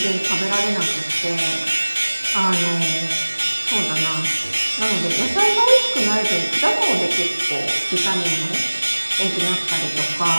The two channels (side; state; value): both; inverted; correlation -1.00